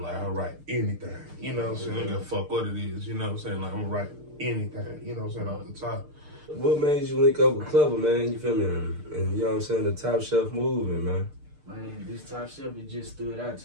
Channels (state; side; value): late; left; 6.6 ms